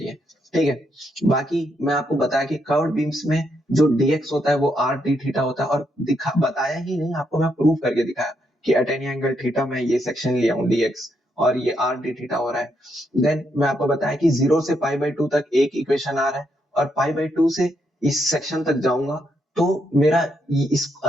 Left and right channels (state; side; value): normal; both; correlation 0.78